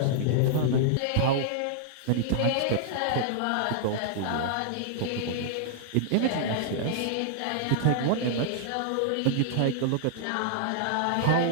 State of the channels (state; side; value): different; both; correlation -0.01